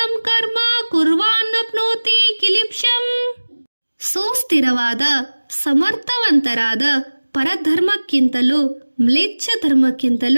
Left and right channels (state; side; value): inverted; both; correlation -1.00